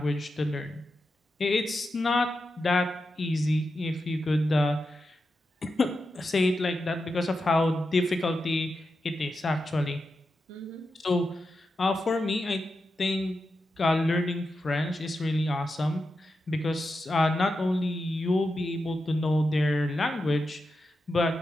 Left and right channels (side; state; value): both; normal; correlation 0.89